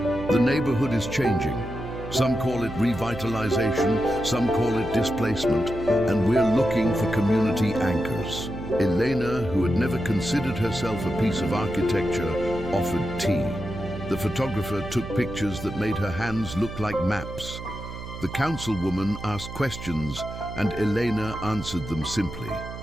The neighborhood is changing. Some call it revitalization, some call it displacement, and we're looking for community anchors. Elena, who had never considered herself a piece of architecture, offered tea. The photographer took pictures that made her hands look like maps. The councilwoman asked questions, and Elena answered them simply.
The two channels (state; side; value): noise; right; hum, 10 dB below the sound